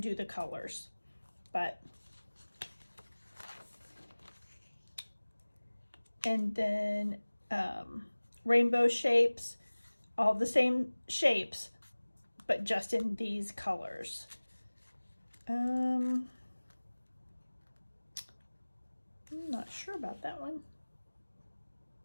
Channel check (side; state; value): both; inverted; correlation -1.00